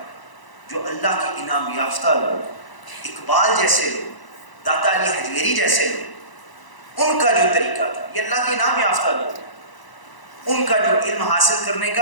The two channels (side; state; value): right; late; 1.0 ms